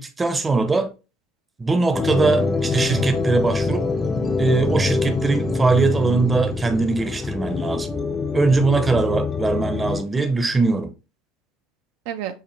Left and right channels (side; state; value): both; normal; correlation 0.82